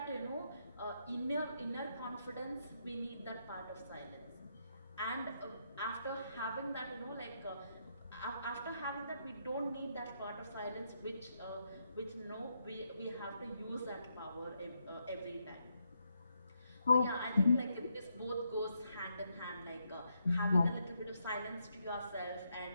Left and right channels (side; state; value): both; inverted; correlation -0.79